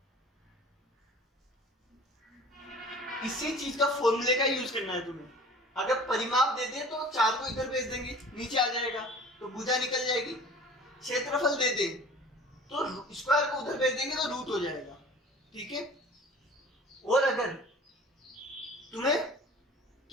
इसी चीज का फॉर्मूले का यूज करना है तुम्हें। अगर परिमाप दे दे तो 4 को इधर भेज देंगे, नीचे आ जाएगा तो भुजा निकल जाएगी। क्षेत्रफल दे दे तो स्क्वायर को उधर भेज देंगे तो रूट हो जाएगा, ठीक है। और अगर तुम्हें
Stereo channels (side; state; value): both; normal; correlation 0.44